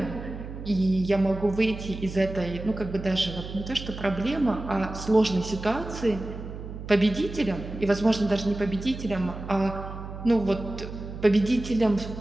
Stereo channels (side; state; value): right; noise; hum, 10 dB below the sound